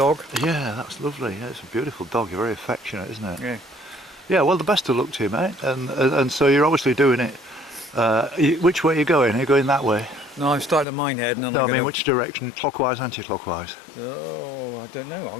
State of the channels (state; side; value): drops out; right; at 10.9 s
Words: Yeah, that's lovely. Yeah, it's a beautiful dog. You're very affectionate, isn't it? Yeah. Yeah, well, the best of luck to you, mate. And so you're obviously doing it. Which way are you going? Are you going that way? No, I'm starting at Minehead, and then No, I'm I mean, gonna... which direction? Clockwise, anti-clockwise? Oh, I don't know. I'm